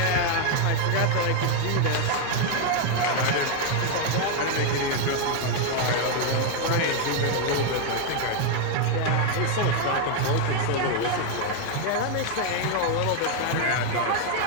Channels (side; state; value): both; different; correlation 0.01